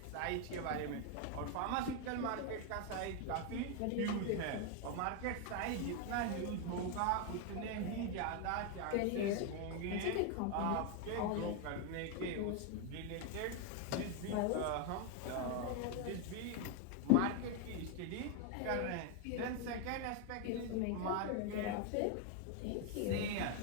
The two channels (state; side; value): different; both; correlation 0.01